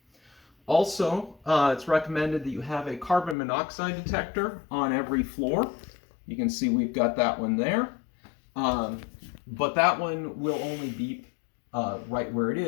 Also, it's recommended that you have a carbon monoxide detector on every floor. You can see we've got that one there. But that one will only beep right where it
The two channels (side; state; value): right; drops out; at 3.4 s